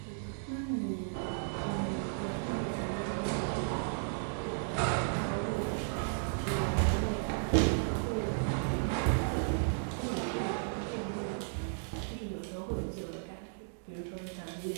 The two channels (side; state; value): left; silent; digital silence